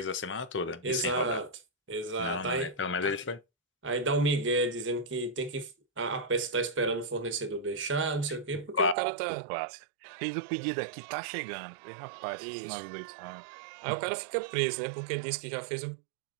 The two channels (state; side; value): drops out; left; at 9.0 s